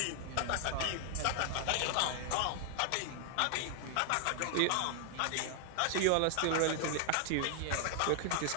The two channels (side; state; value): both; different; correlation 0.00